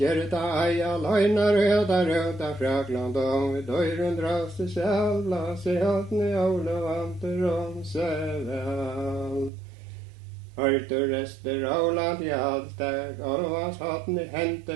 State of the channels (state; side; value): drops out; left; at 9.5 s